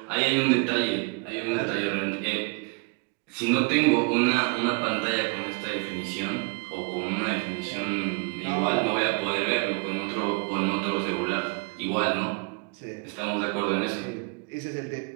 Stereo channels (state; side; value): quieter; left; 31.0 dB